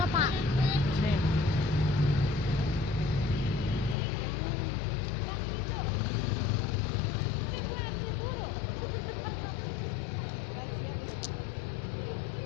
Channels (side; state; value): right; drops out; at 4.0 s